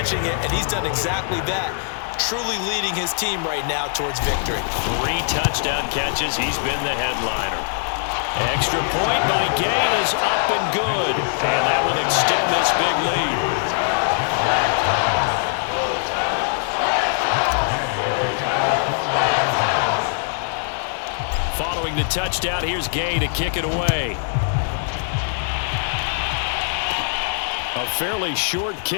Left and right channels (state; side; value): silent; right; digital silence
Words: it, and he's done exactly that, truly leading his team right now towards victory. 3 touchdown catches. He's been the headliner. Extra point by Gay is up and good. And that will extend this big lead. Following the touchdown, here's Gay to kick it away. A fairly short